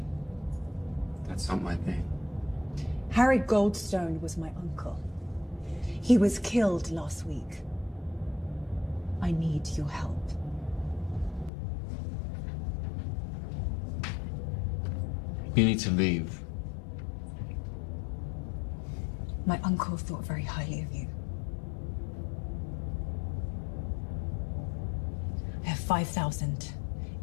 That's not my thing. Harry Goldstone was my uncle. He was killed last week. I need your help. You need to leave. My uncle thought very highly of you. I have 5,000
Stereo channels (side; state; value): right; drops out; at 11.5 s